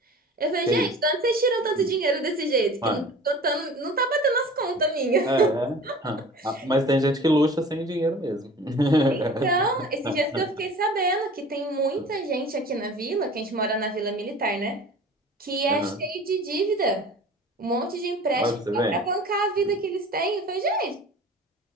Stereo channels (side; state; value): both; normal; correlation 0.42